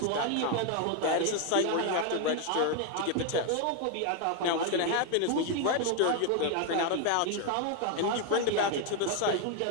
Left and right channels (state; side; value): different; both; correlation 0.01